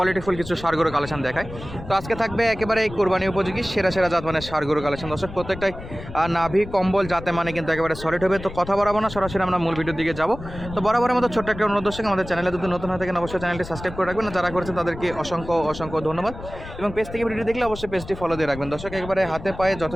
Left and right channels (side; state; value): left; noise; rumble, 13 dB below the sound